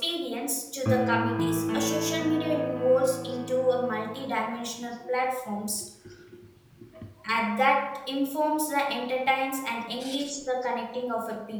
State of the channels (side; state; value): both; identical; correlation 1.00